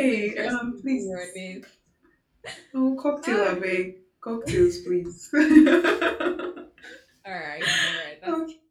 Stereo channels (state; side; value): identical; both; correlation 1.00